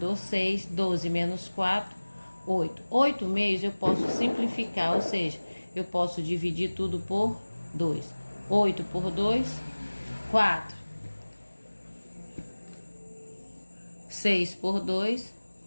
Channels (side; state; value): both; inverted; correlation -1.00